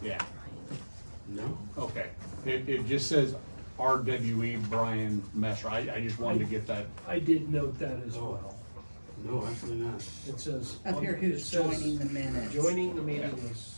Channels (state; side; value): inverted; both; correlation -1.00